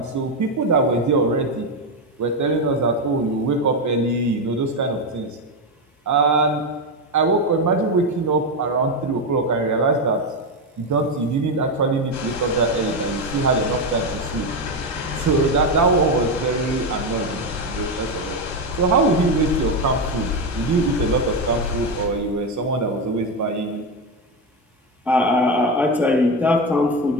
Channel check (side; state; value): both; normal; correlation 0.11